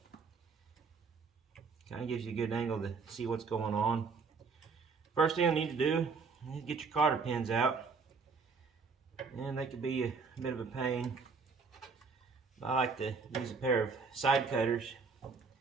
kind of gives you a good angle to see what's going on. First thing you need to do is get your cotter pins out, and they could be a bit of a pain. I like to use a pair of side cutters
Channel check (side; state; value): left; quieter; 4.9 dB